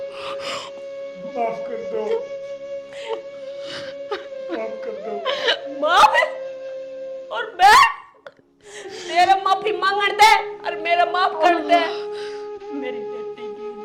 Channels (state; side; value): identical; both; correlation 1.00